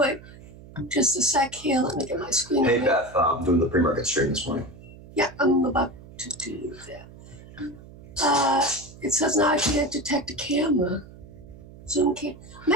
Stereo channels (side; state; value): right; noise; hum, 19 dB below the sound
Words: Just a sec here. Let me get my screen. Hey, Beth, I'm doing the pre-market stream this morning. Yeah, I'm about to do that. It says now I can't detect a camera. Zoom can't.